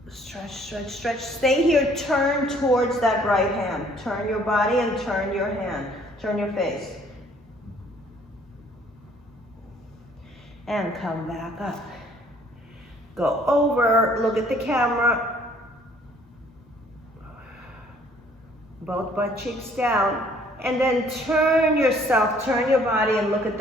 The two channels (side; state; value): both; normal; correlation 0.60